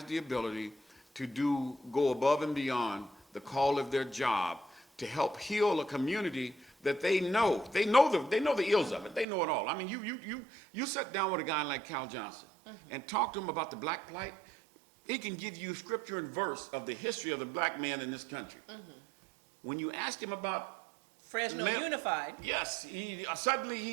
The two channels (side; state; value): left; drops out; at 9.2 s